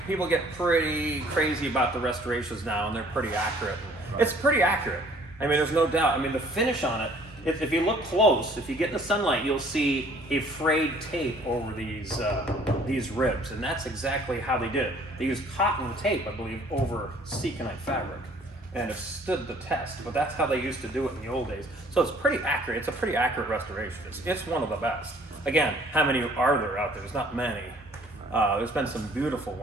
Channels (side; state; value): both; normal; correlation 0.56